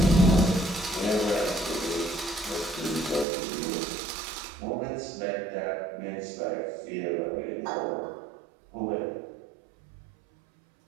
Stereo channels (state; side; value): drops out; left; at 3.2 s